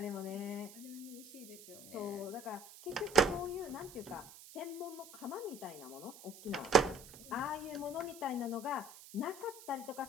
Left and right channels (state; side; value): noise; right; hiss, 17 dB below the sound